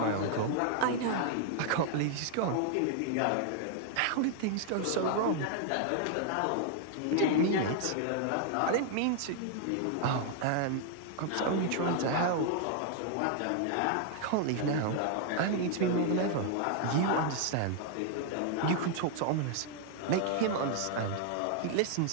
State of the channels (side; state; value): both; different; correlation 0.00